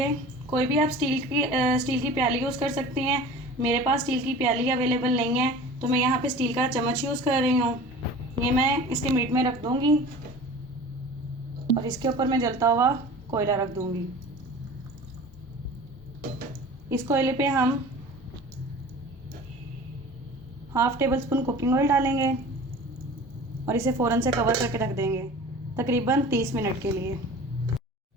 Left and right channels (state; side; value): normal; both; correlation 0.40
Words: कोई भी आप स्टील की प्याली यूज़ कर सकते हैं। मेरे पास स्टील की प्याली अवेलेबल नहीं है तो मैं यहाँ पे स्टील का चम्मच यूज़ कर रही हूँ। ये मैं इसके मीट में रख दूँगी और इसके ऊपर मैं जलता हुआ कोयला रख दूँगी। इस कोयले पे हम half table spoon cooking oil डालेंगे और इसे फ़ौरन से कवर करके रख देंगे तकरीबन 30 मिनट के लिए।